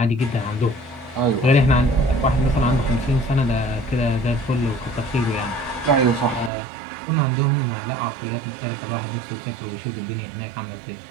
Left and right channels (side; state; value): left; drops out; at 6.5 s